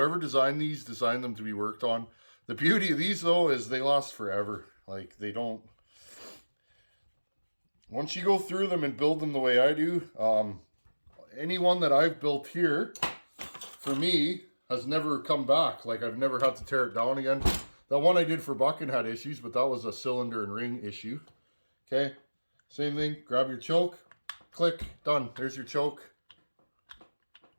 designed these, designed them to be worked on. The beauty of these, though, is they last forever. Like, they don't... Once you go through them and build them the way I do, any one that I've built here, for me, has never come back. Like, I've never had to tear it down again. That one I did for Bucking had issues, but that was a cylinder and ring issue. Okay, same thing. Grab your choke. Click. Done. There's your choke.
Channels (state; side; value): inverted; both; correlation -1.00